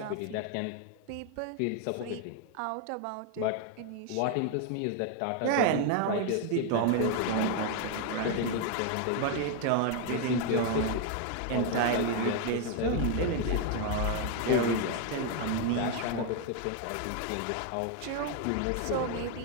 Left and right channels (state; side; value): different; both; correlation 0.01